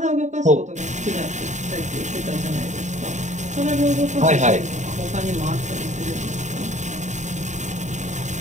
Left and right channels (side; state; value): left; late; 0.34 ms